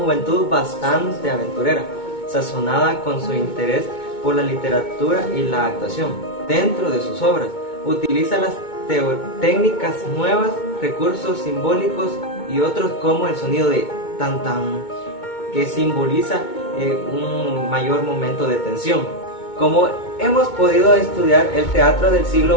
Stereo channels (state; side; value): late; right; 2.2 ms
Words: bastante aventurera, sazonada con su interés por la literatura y la actuación. Dentro de sus obras, utiliza las técnicas nuevas, recursos simbólicos y otros como el sonido de tan tan, que simboliza un mayor momento de tensión. Como hemos podido estudiar, el teatro del